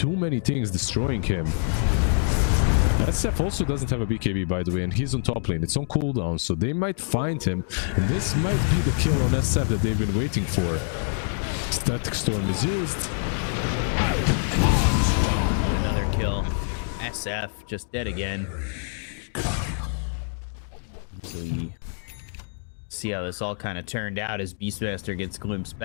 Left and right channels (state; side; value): silent; right; digital silence